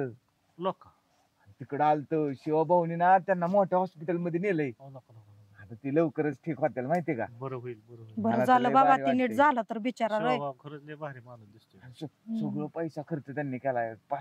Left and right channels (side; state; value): both; identical; correlation 1.00